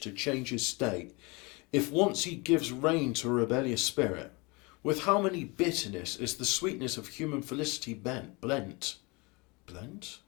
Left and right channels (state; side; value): quieter; right; 27.4 dB